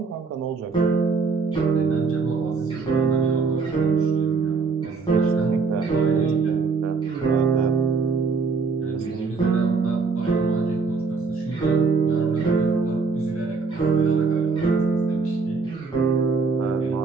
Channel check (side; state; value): left; quieter; 4.7 dB